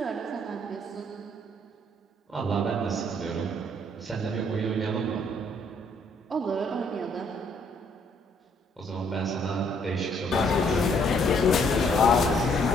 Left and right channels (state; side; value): normal; both; correlation 0.66